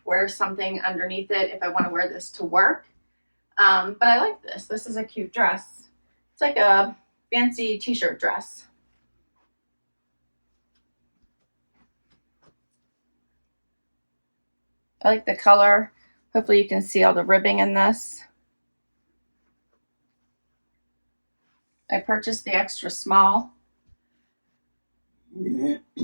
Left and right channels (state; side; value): inverted; both; correlation -1.00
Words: wear something underneath it if I want to wear this to work. But I like this. This is a cute dress. It's like a fancy t-shirt dress. I like the color. Hopefully you can see all the ribbing in this. I purchased the extra small. I